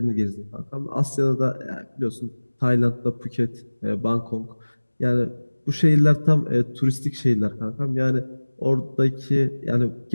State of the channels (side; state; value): both; inverted; correlation -1.00